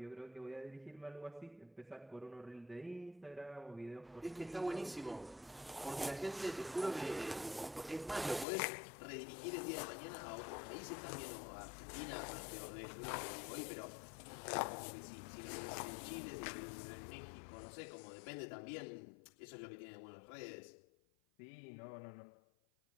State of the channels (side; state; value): right; drops out; at 8.5 s